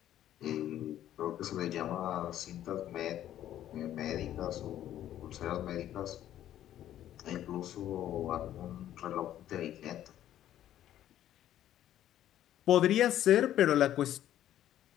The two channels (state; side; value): quieter; right; 12.0 dB